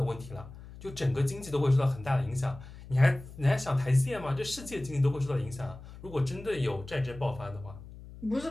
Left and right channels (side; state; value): left; noise; hum, 16 dB below the sound